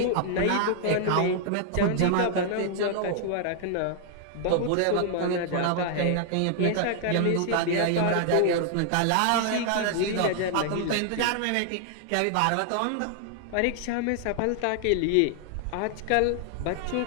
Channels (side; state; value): both; different; correlation 0.00